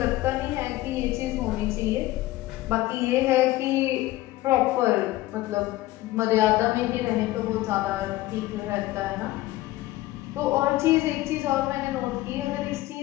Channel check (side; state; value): right; quieter; 17.2 dB